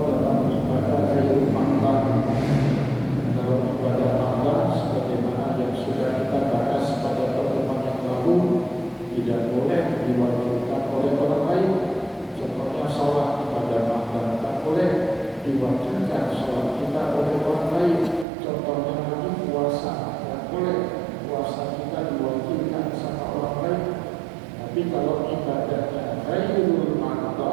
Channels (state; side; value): drops out; left; at 18.2 s